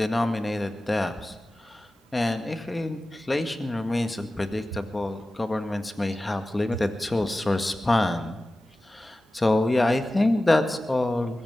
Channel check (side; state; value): both; normal; correlation 0.95